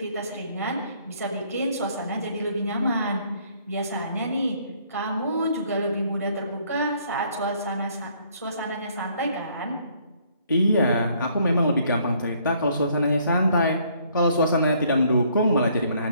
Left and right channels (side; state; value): both; inverted; correlation -0.64